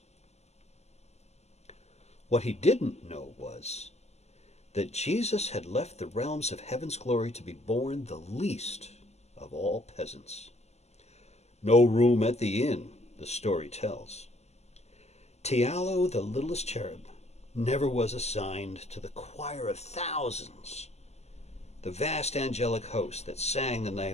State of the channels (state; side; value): late; right; 0.32 ms